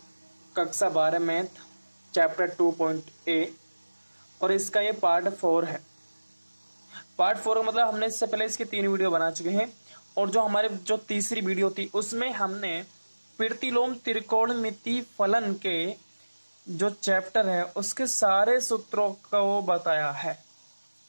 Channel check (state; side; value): inverted; both; correlation -1.00